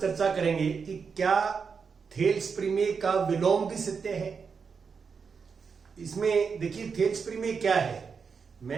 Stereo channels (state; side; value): quieter; left; 5.7 dB